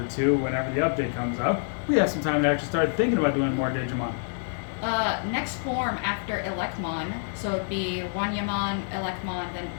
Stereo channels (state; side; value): silent; right; digital silence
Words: 2, whenever the update comes up, we have some time to actually start thinking about doing more Digimon. Next form after Elekmon, so it'd be Wanyamon, Elekmon, then